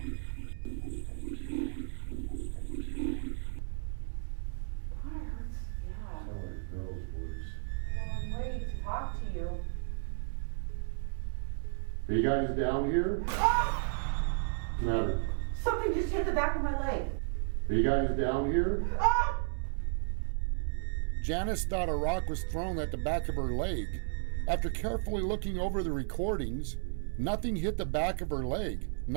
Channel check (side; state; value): left; silent; 56 dB below the other